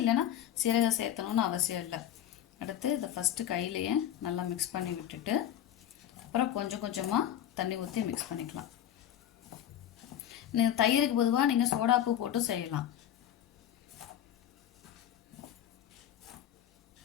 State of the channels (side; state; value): right; quieter; 11.0 dB